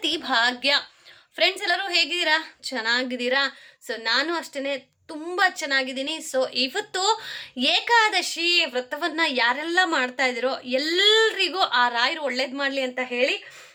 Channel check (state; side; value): identical; both; correlation 1.00